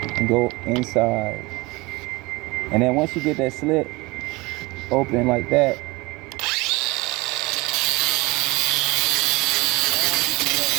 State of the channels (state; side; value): quieter; left; 23.4 dB